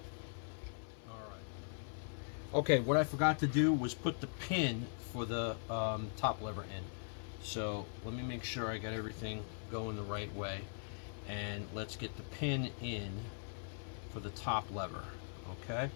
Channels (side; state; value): right; silent; 51 dB below the other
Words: Okay, what I forgot to do was put the pin for the top lever in. So let me make sure I got everything going the right way. And let's get the pin in for the top lever. Okay.